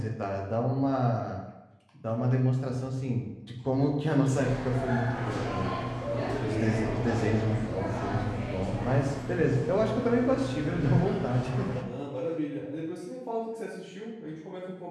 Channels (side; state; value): both; identical; correlation 1.00